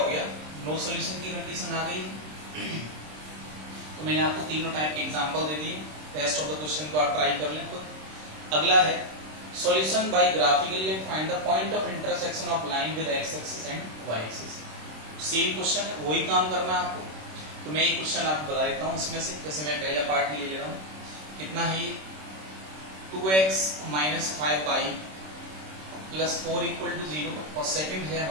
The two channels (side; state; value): left; late; 26 ms